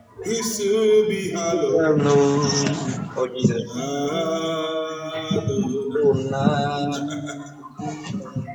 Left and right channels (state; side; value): identical; both; correlation 1.00